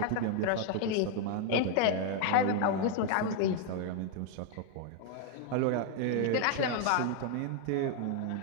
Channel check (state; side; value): different; both; correlation 0.00